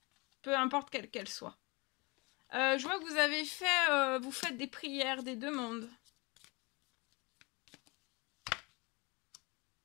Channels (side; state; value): right; quieter; 27.2 dB